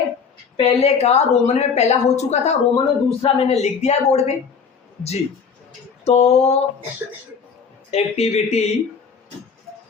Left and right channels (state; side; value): quieter; right; 5.9 dB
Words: पहले का रोमन में पहला हो चुका था, रोमन में दूसरा मैंने लिख दिया है बोर्ड पे जी। तो एक्टिविटी